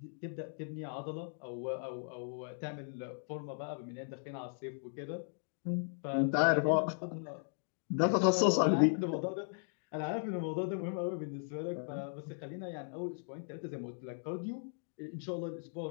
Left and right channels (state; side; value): silent; right; digital silence